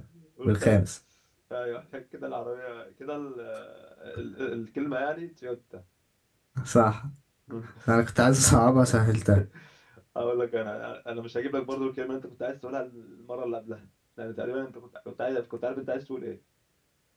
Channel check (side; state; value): both; identical; correlation 1.00